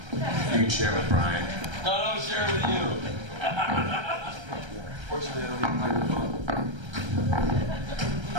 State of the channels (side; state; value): left; late; 1.3 ms